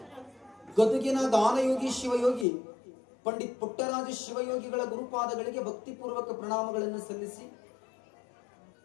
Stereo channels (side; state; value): right; drops out; at 2.5 s